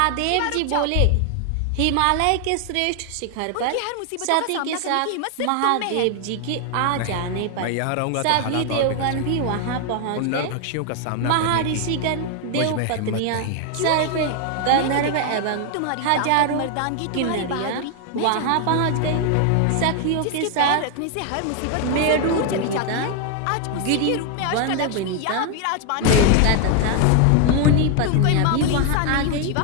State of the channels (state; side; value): different; both; correlation 0.00